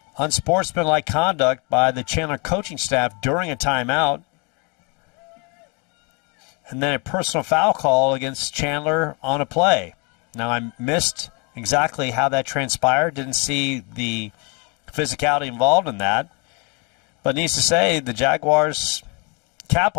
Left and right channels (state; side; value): quieter; right; 31.9 dB